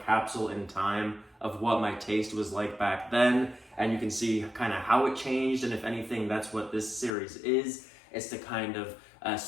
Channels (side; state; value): right; drops out; at 7.1 s